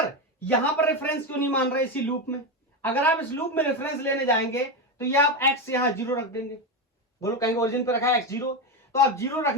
यहां पर रेफरेंस क्यों नहीं मान रहे इसी लूप में? अगर आप इस लूप में रेफरेंस लेने जाएंगे तो ये आप x यहां जीरो रख देंगे। बोलो, कहेंगे ओरिजिन पे रखा है x जीरो, तो आप जीरो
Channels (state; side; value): normal; both; correlation 0.13